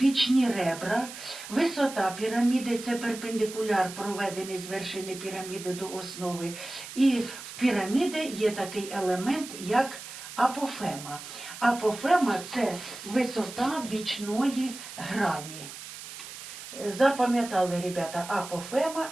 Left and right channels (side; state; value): right; noise; hiss, 12 dB below the sound